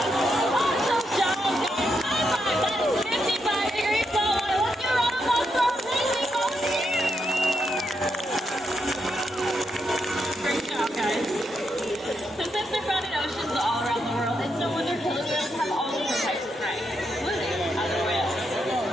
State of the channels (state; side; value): normal; both; correlation 0.81